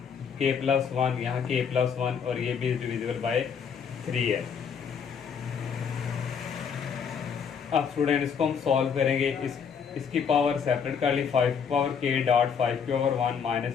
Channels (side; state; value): right; quieter; 6.8 dB